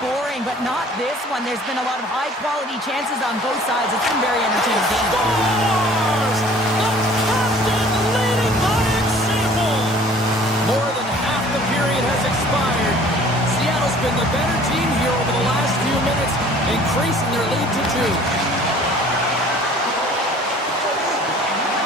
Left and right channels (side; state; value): both; normal; correlation 0.51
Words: boring, but not this one. There's been a lot of high-quality chances on both sides. It's been very entertaining game. Scores! The captain leading by example. More than half the period has expired. Seattle's been the better team here over the last few minutes, increasing their lead to 2.